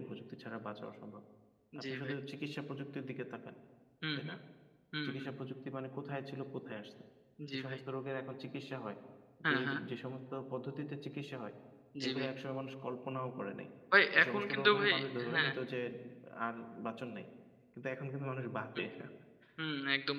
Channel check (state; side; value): identical; both; correlation 1.00